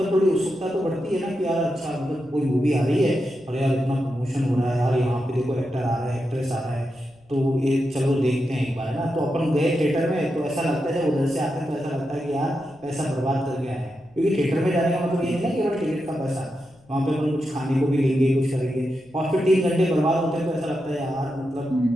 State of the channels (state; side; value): noise; left; rumble, 30 dB below the sound